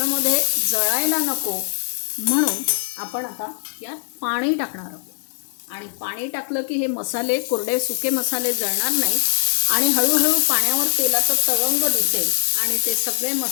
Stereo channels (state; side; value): silent; right; digital silence